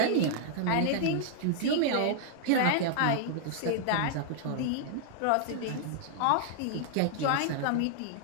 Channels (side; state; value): both; different; correlation -0.01